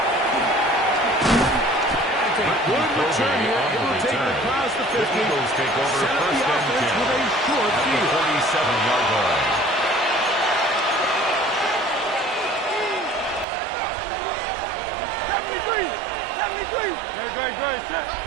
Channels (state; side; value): drops out; left; at 13.5 s